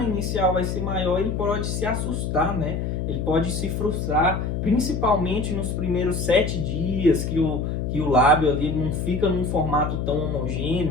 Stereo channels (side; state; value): left; noise; hum, 2 dB below the sound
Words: inicial vai ser maior, ele pode se assustar, né? Ele pode se frustrar, principalmente nos primeiros 7 dias que o lábio ali não fica num formato tão